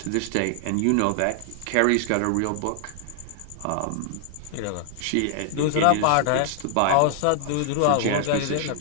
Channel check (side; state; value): both; different; correlation -0.01